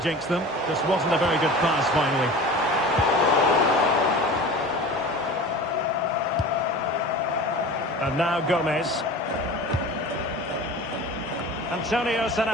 them. Just wasn't a very good pass finally. And now Gomez. Antonio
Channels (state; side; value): normal; both; correlation 0.37